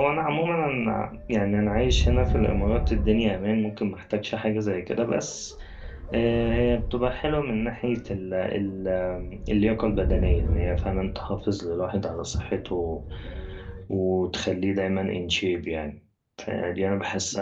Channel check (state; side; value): identical; both; correlation 1.00